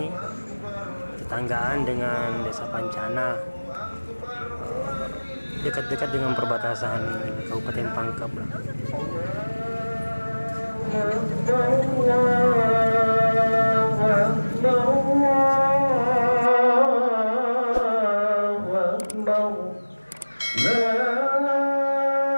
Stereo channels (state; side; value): inverted; both; correlation -1.00